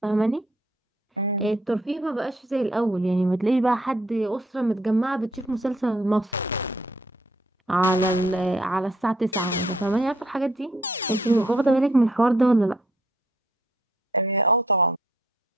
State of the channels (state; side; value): normal; both; correlation 0.66